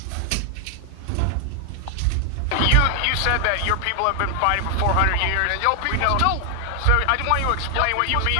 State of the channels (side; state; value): both; different; correlation 0.00